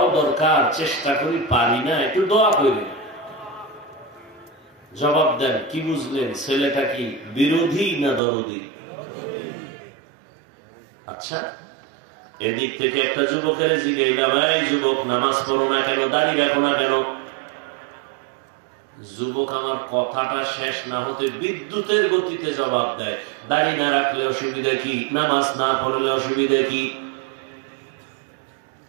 দরকার, চেষ্টা করি পারি না, একটু দোয়া করি। জবাব দেন, কি বুঝলেন? ছেলেটা কি বিরোধী না দরদি? আচ্ছা, এদিক থেকে একটা যুবকের জিজ্ঞাসা, ভাই যুবক নামাজ পড়ো না কেন, দাড়ি রাখো না কেন? যুবক আমার কথাটা শেষ না হতে বিদ্যুতের গতিতে জবাব দেয়, দাড়ি না রাখলে অসুবিধা কি, নামাজ না পড়লে অসুবিধা কি?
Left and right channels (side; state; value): left; drops out; at 8.2 s